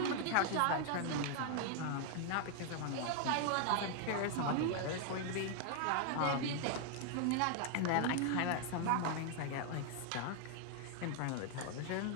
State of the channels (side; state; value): both; different; correlation 0.00